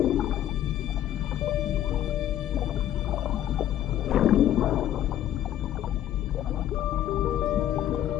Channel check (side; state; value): right; quieter; 11.8 dB